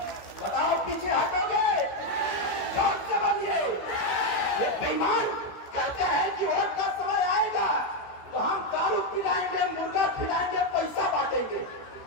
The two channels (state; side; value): late; right; 16 ms